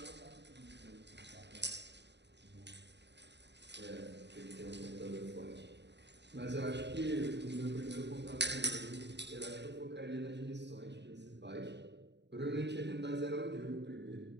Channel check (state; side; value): late; left; 0.50 ms